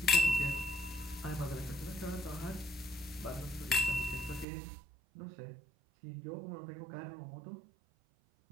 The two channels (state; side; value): drops out; left; at 4.5 s